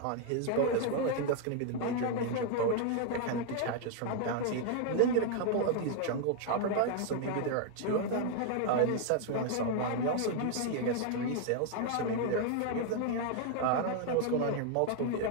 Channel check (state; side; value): different; both; correlation 0.00